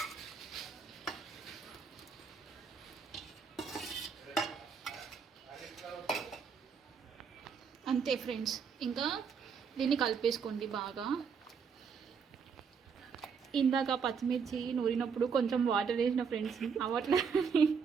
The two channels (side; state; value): left; quieter; 6.2 dB